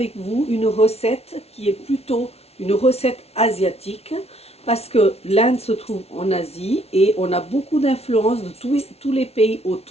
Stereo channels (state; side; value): late; right; 0.30 ms